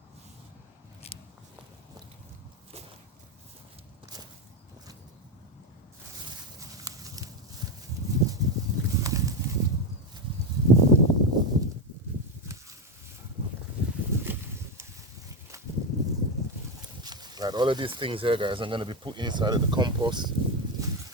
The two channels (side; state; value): both; normal; correlation 0.11